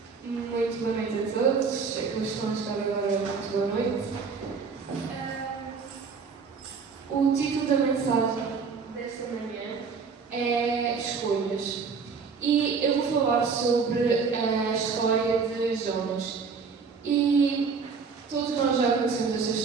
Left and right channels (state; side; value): quieter; left; 5.3 dB